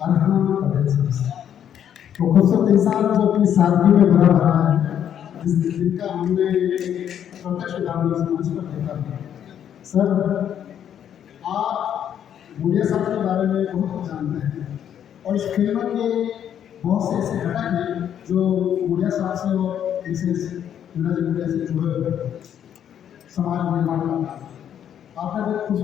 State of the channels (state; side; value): quieter; right; 9.5 dB